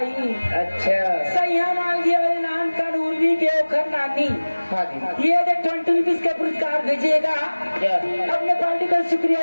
अच्छा सैया माल गिया वाले नाम का उर्वी के ओखर नानी हाँ जी ये 20 रुपीज का पुरस्कार भेजिएगा जय अपने पार्टी का शुक्रिया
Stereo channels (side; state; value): both; inverted; correlation -1.00